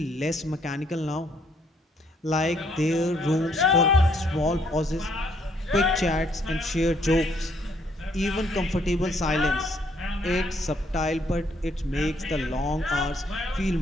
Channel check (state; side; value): normal; both; correlation 0.68